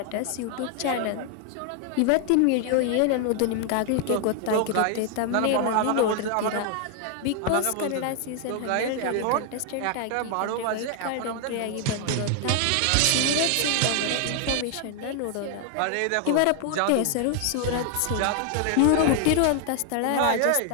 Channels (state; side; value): different; both; correlation 0.00